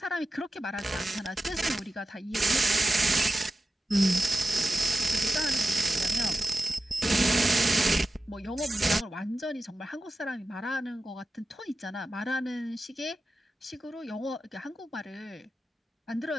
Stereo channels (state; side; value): normal; both; correlation 0.93